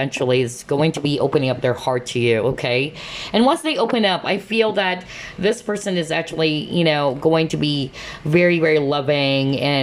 is going to be opening up their heart to you, okay? And once they open up, I feel that this person is actually, going to be very, very loving.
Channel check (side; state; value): both; identical; correlation 1.00